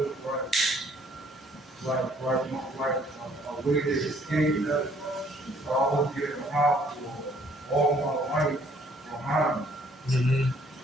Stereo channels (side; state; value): both; normal; correlation 0.61